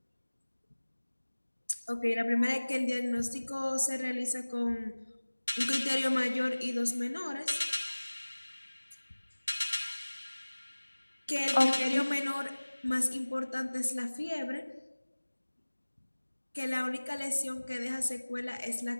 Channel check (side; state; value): both; inverted; correlation -1.00